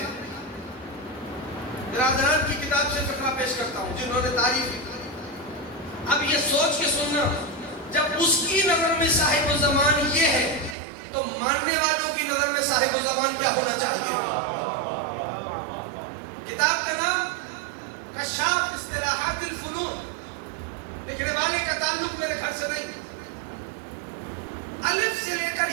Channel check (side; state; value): left; drops out; at 10.8 s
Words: برادران کی کتاب سے فقرہ پیش کرتا ہوں جنہوں نے تعریف کی. اب یہ سوچ کے سننا، جب اس کی نظر میں صاحب الزمان یہ ہے تو ماننے والوں کی نظر میں صاحب الزمان کیا ہونا چاہیے؟ کتاب کا نام کشاف اصطلاحات الفنون، لکھنے والے کا تعلق میرے گھر سے نہیں. الف سے لے کر